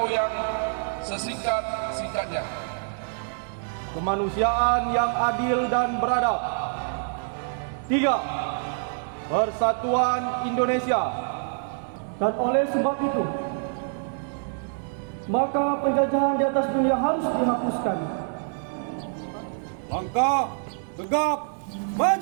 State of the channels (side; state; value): left; silent; 61 dB below the other